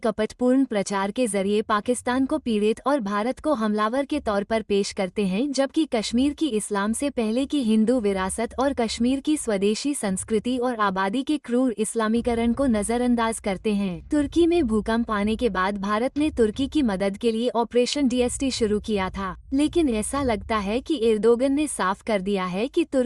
प्रचार के जरिए पाकिस्तान को पीड़ित और भारत को हमलावर के तौर पर पेश करते हैं, जबकि कश्मीर की इस्लाम से पहले की हिंदू विरासत और कश्मीर की स्वदेशी संस्कृति और आबादी के क्रूर इस्लामीकरण को नजरअंदाज करते हैं। तुर्की में भूकंप आने के बाद भारत ने तुर्की की मदद के लिए ऑपरेशन DST शुरू किया था, लेकिन ऐसा लगता है कि एर्दोगन ने साफ कर दिया है कि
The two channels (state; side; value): identical; both; correlation 1.00